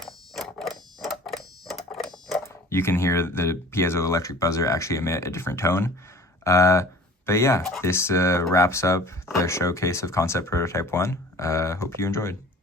you can hear the piezoelectric buzzer actually emit a different tone. But yeah, this wraps up the showcase of Concept Prototype 1. Hope you enjoyed.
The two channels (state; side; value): normal; both; correlation 0.46